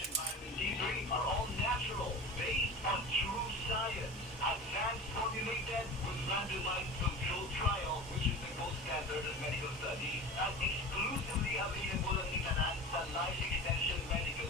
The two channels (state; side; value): normal; both; correlation 0.33